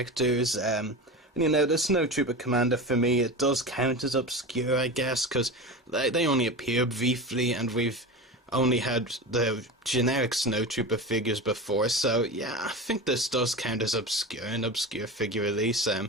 The Snowtrooper Commander, for me, it does count as obscure, I guess, because they only appear briefly, and we've only had the generic Snowtrooper figures before, so yeah, I think this does count as an obscure figure release,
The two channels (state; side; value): normal; both; correlation 0.26